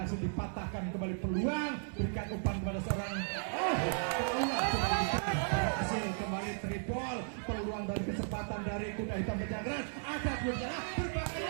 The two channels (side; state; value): left; silent; digital silence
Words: dipatahkan kembali peluang, berikan umpan kepada seorang berhasil kembali tripol, peluang dari kesempatan dari Kuda Hitam Pejagran, ada berbahaya